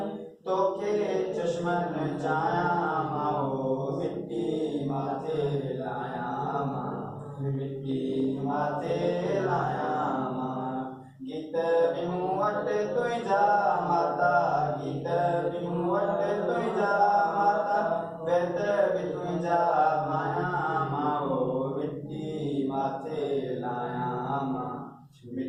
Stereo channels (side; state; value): both; identical; correlation 1.00